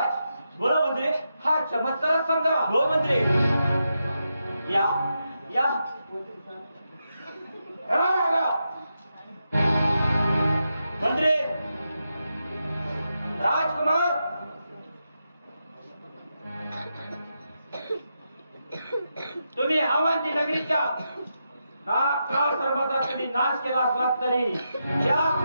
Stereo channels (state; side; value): inverted; both; correlation -0.86